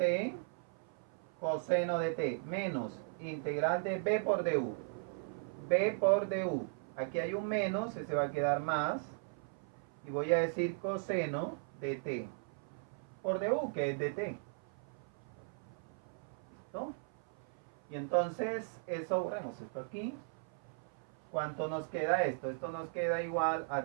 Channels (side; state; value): left; silent; 53 dB below the other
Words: coseno de t, menos integral de b por du. B por du. Aquí hay un menos, se va a quedar más. Y voy a decir coseno de t por du, que es de t. ¿Listo? Y entonces, eso, borremos esto aquí. ¿Cuánto nos queda esto? Esto nos queda igual a